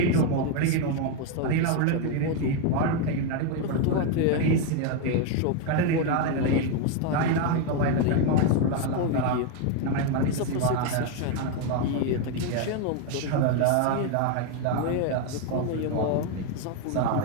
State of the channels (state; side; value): different; both; correlation 0.01